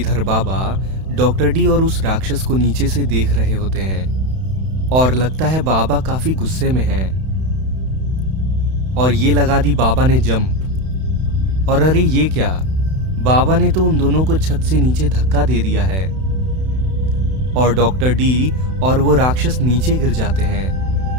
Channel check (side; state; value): left; late; 31 ms